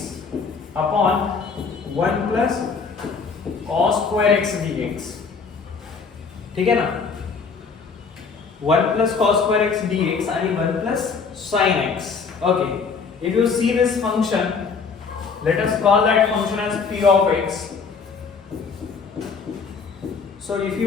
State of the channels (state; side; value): quieter; right; 5.2 dB